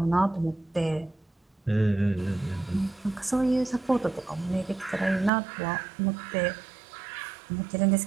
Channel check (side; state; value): left; drops out; at 5.3 s